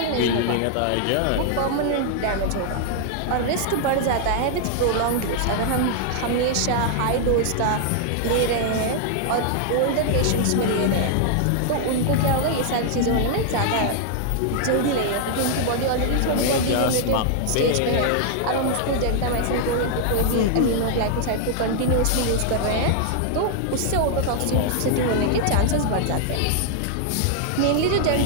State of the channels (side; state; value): both; different; correlation 0.00